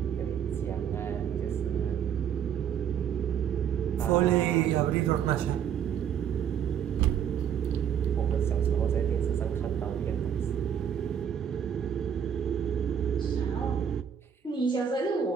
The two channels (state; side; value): quieter; left; 8.5 dB